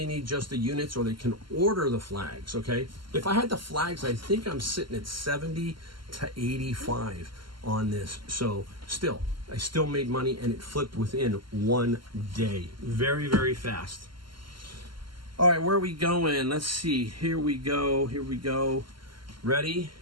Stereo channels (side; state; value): left; late; 0.72 ms